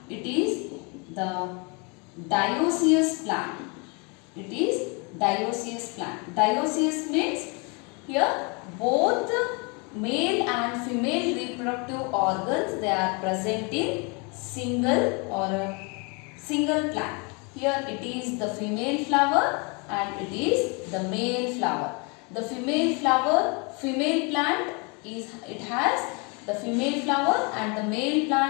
it is the dioecious plant. Dioecious means here both male and female reproductive organs, they are present in single plant. Here it is the female flower and it is the male flower. The female plant it has the female flower, and the male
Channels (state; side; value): quieter; right; 31.8 dB